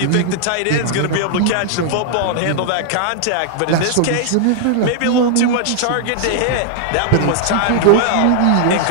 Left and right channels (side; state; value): both; different; correlation -0.01